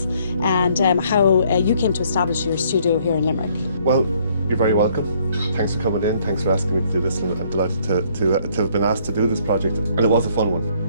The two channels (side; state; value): both; inverted; correlation -0.64